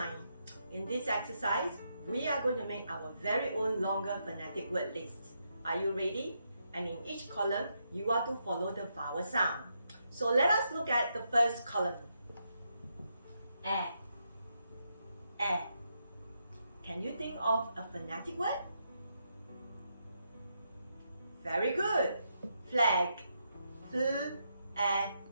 In this exercise, we are going to make our very own longer phonetic word list. Are you ready? And in each column, you are to follow the vowel sound. So let us look at the first column. A. Can you think of a phonetic word? Very good. Flag.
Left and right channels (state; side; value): inverted; both; correlation -0.81